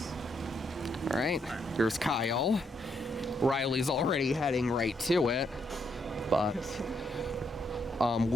All right, here's Kyle. Riley's already heading right to it, but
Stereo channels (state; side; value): normal; both; correlation 0.76